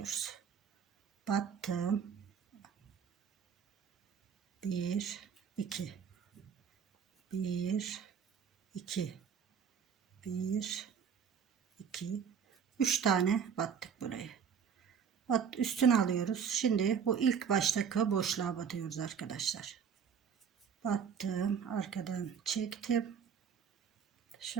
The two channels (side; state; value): left; quieter; 7.1 dB